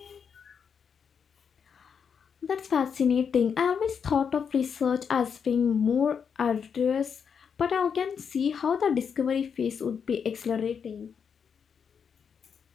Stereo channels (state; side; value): quieter; right; 6.8 dB